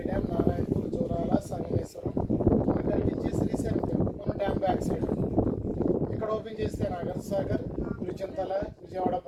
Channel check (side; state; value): both; identical; correlation 1.00